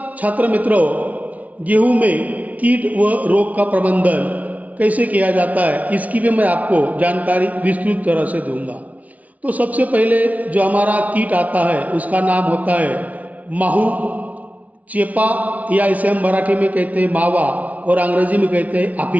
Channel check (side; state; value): left; late; 0.071 ms